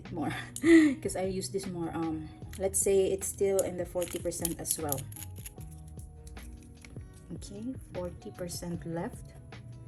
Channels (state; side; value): identical; both; correlation 1.00